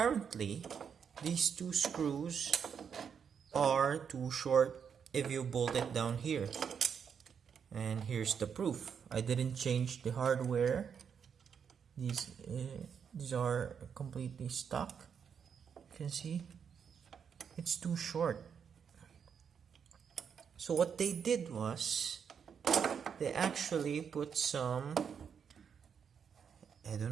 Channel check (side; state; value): left; quieter; 7.1 dB